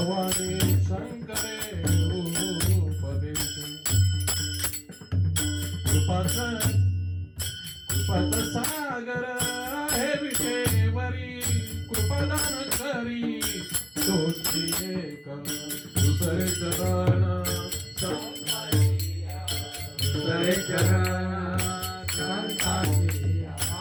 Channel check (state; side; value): identical; both; correlation 1.00